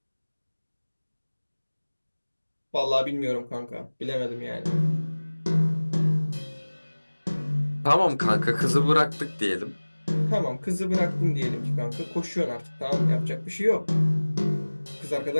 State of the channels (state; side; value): inverted; both; correlation -1.00